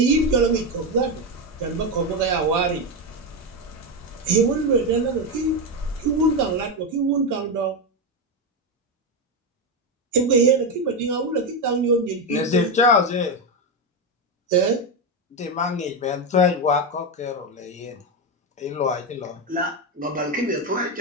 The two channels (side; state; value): both; normal; correlation 0.10